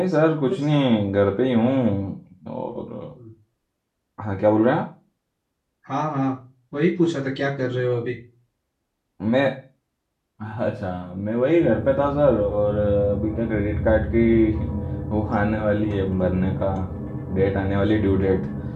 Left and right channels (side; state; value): both; identical; correlation 1.00